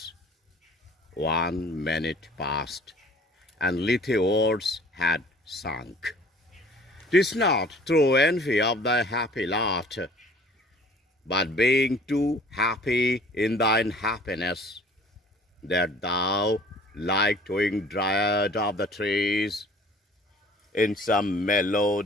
1 minute passed, and little words had sunk. 'Tis not through envy of thy happy lot, but being too happy in thine happiness, that thou, like twin dryad of the trees, in some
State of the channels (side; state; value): both; normal; correlation 0.51